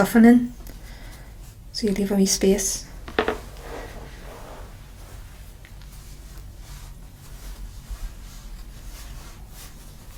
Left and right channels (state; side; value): identical; both; correlation 1.00